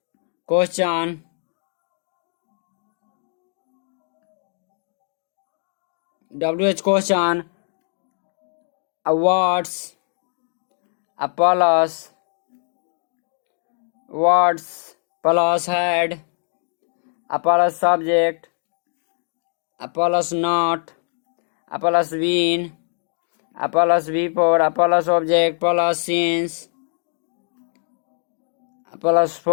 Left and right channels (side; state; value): right; silent; 64 dB below the other